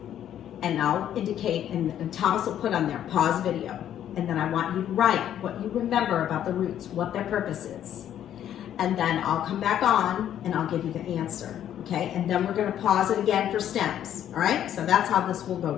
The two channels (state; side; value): quieter; right; 10.6 dB